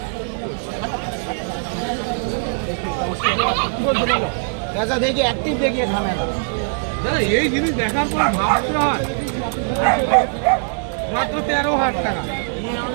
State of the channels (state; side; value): silent; left; digital silence